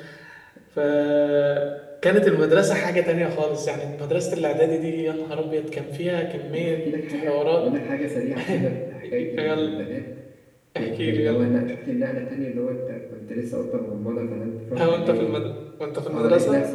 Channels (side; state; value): both; identical; correlation 1.00